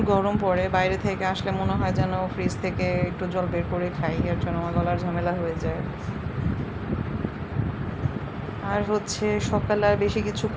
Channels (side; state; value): both; identical; correlation 1.00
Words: গরম পড়ে, বাইরে থেকে আসলে মনে হয় যেন ফ্রিজ থেকে একটু জল বের করে খাই, এর জন্য আমার গলার ঝামেলা হয়ে যায়। আর হচ্ছে সকালে আর বেশি কিছু